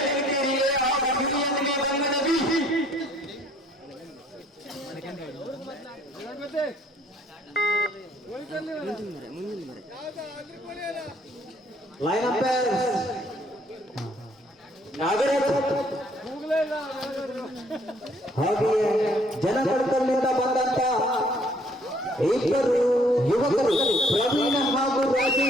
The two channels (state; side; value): normal; both; correlation 0.62